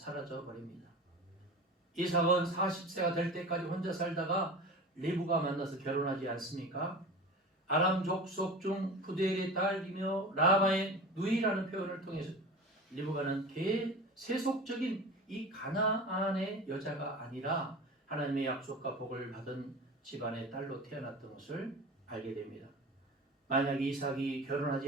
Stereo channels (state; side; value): normal; both; correlation 0.34